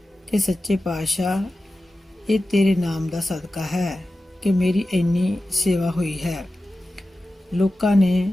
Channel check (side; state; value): both; normal; correlation 0.94